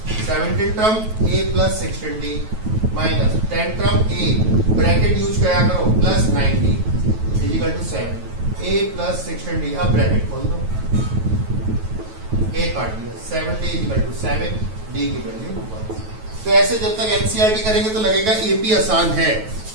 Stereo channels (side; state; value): left; late; 9.2 ms